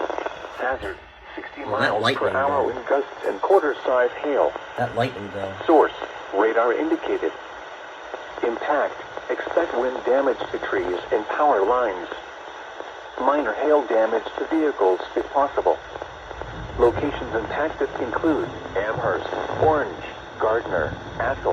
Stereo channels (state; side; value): identical; both; correlation 1.00